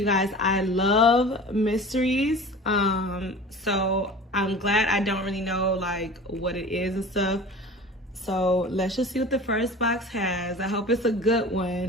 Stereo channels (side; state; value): both; normal; correlation 0.39